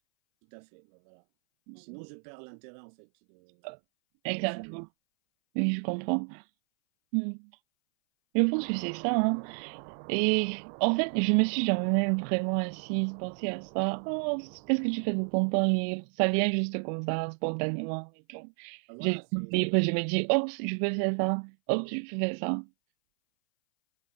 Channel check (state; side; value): silent; left; 58 dB below the other